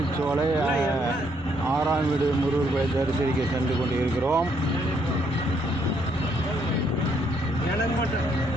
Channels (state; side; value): normal; both; correlation 0.71